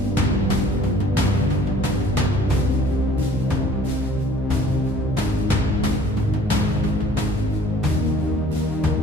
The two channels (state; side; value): normal; both; correlation 0.52